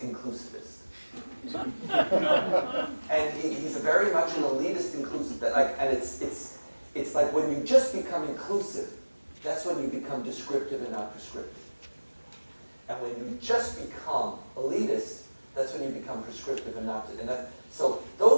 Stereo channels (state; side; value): inverted; both; correlation -1.00